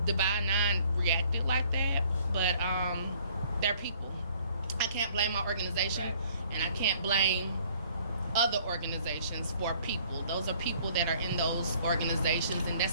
Divine Nine reacted like that. But they're people. I can't blame my organization, and I can't blame other organizations for people. Those are people that are in those organizations, and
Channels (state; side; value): inverted; both; correlation -0.58